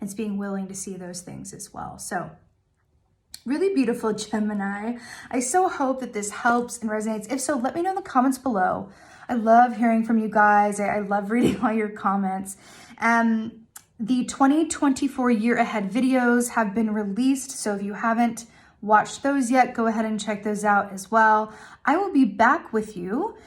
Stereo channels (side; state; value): both; identical; correlation 1.00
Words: It's being willing to see those things as well. So really beautiful, Gemini. I so hope that this helps and resonates. If so, let me know in the comments below. I love hearing from you guys. I love reading all your comments. The 2024 year ahead videos have been released, so if you haven't watched those yet, go ahead and check those out as well. I will be back with you